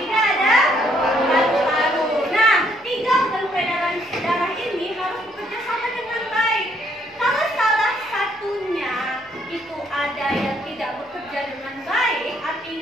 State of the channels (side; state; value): both; normal; correlation 0.69